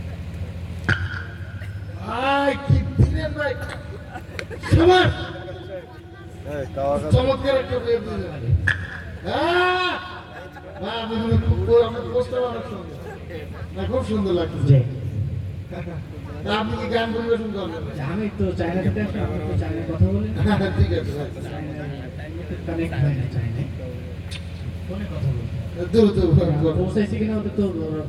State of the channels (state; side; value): identical; both; correlation 1.00